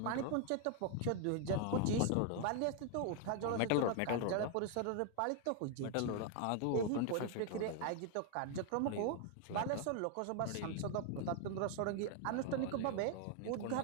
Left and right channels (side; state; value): both; different; correlation 0.00